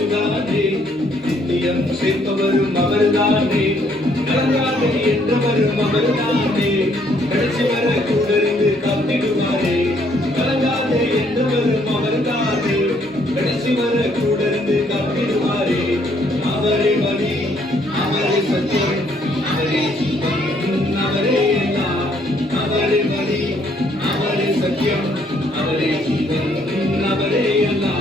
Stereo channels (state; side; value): normal; both; correlation 0.67